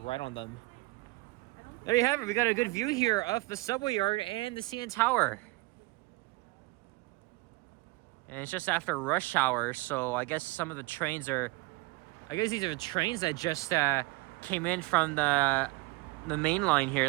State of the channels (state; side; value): quieter; left; 23.3 dB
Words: on them. There you have it. We got a good view here of the subway yard and the CN Tower. And it's just after rush hour, so I guess some of the trains are... I guess these are the trains that just came in from the main line